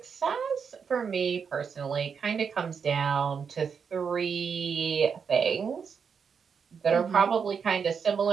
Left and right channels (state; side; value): quieter; left; 6.4 dB